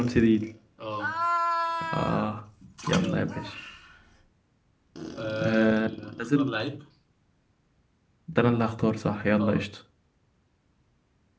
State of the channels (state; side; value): identical; both; correlation 1.00